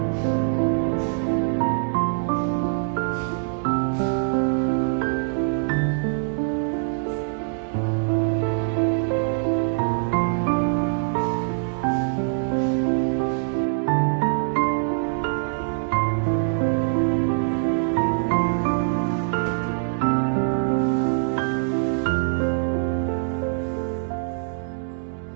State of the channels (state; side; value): silent; left; digital silence